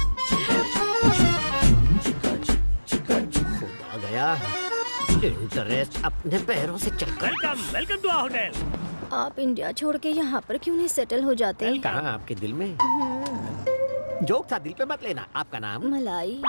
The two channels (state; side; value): inverted; both; correlation -1.00